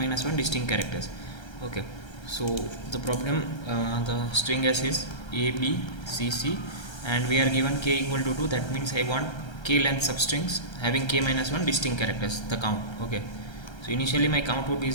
1 distinct characters. Okay, so the problem, the string s is a, b, c, c, and we are given k equal to 2. That means I want k length substrings having k minus 1 distinct characters, the count. Okay, so initially my count would be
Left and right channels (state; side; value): late; right; 1.3 ms